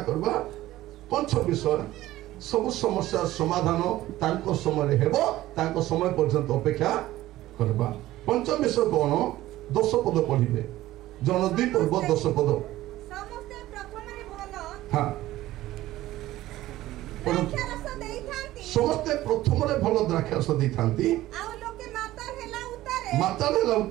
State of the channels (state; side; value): quieter; left; 15.7 dB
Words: କରିବା। ପଞ୍ଚମ ବିଷୟ, ସବୁ ସମସ୍ୟାର ସମାଧାନ ତାଙ୍କ ସମୟରେ ହେବ, ତାଙ୍କ ସମୟ ପର୍ଯ୍ୟନ୍ତ ଅପେକ୍ଷା କରିବା। ପଞ୍ଚମ ବିଷୟ କଣ? 10 ପଦ ପଢିବେ, ଜନ 2 ପର୍ବ 10 ପଦ। ସମସ୍ତେ ପ୍ରଥମରେ ଭଲ ହଁ, ସମସ୍ତେ ପ୍ରଥମରେ ଭଲ ଦ୍ରାକ୍ଷାରସ ଦେଇଥାନ୍ତି, ଆଉ ଲୋକେ ମାତାଲ ହେଲା